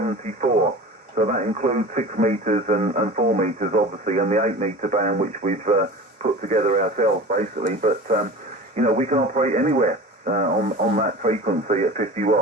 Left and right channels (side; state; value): both; normal; correlation 0.36